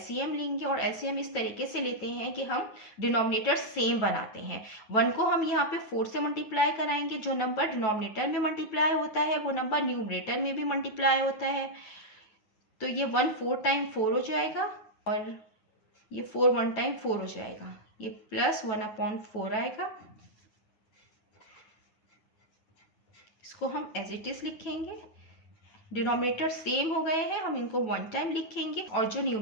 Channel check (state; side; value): late; right; 9.2 ms